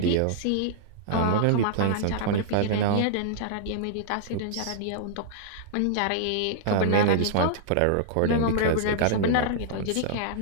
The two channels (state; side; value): different; both; correlation -0.01